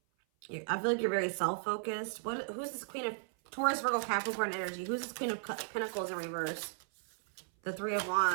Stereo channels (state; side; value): silent; left; 54 dB below the other